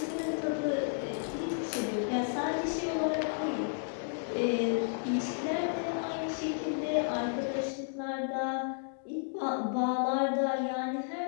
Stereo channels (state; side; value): silent; right; digital silence